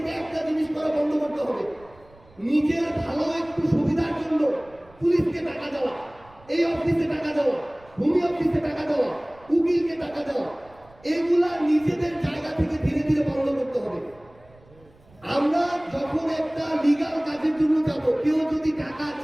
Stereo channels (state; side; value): noise; right; rumble, 27 dB below the sound